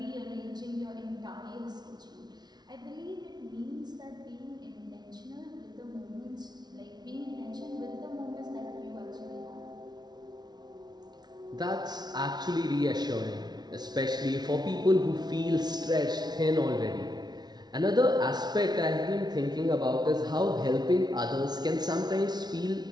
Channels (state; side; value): late; left; 0.20 ms